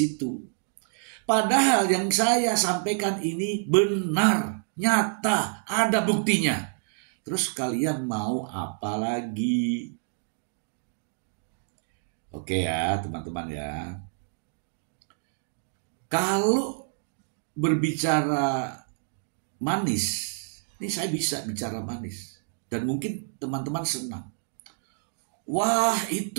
Padahal yang saya sampaikan ini benar, nyata, ada buktinya. Terus kalian mau apa lagi? Oke ya teman-teman ya. Kalau berbicara manis, ini saya bisa bicara manis. Dan mungkin teman-teman senang. Wah,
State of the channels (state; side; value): silent; left; digital silence